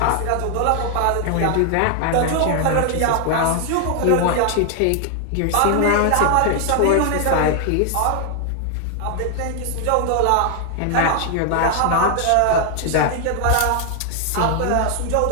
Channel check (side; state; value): both; different; correlation 0.00